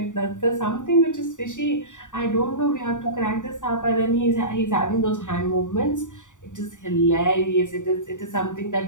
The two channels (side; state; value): right; late; 0.86 ms